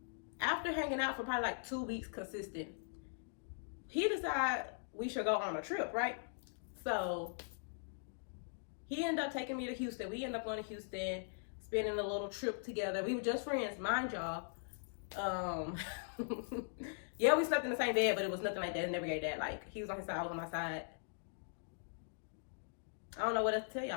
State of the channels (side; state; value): right; silent; digital silence